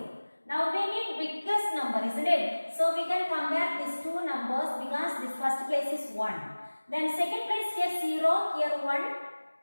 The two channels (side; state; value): both; inverted; correlation -1.00